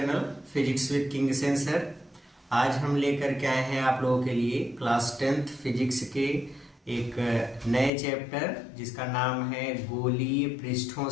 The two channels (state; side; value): drops out; right; at 7.9 s